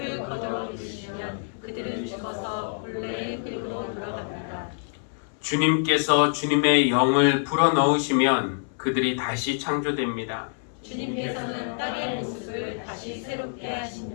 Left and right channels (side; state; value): right; silent; 60 dB below the other